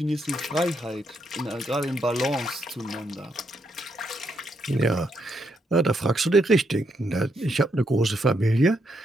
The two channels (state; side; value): normal; both; correlation 0.78